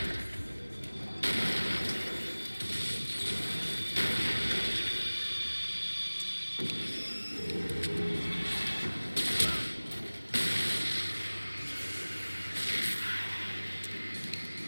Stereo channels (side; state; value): both; inverted; correlation -1.00